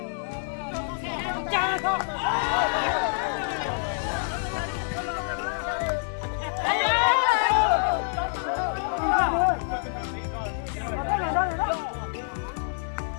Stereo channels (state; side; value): silent; right; 57 dB below the other